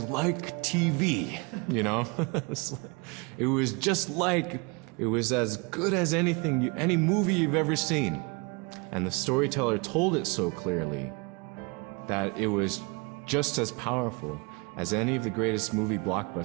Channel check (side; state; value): left; quieter; 29.9 dB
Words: like TV, It was just like, it was as good as any movie you've ever seen. And the storyteller told it so clearly that it was just as powerful as any of the greatest movie